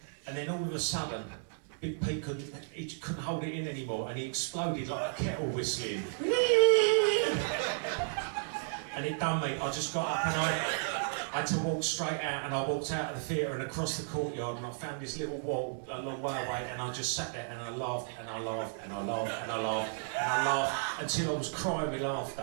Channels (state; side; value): silent; left; 55 dB below the other